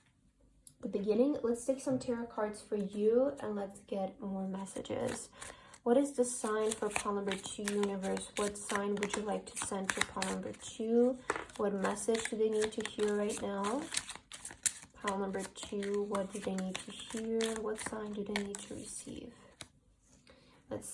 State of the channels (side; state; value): both; identical; correlation 1.00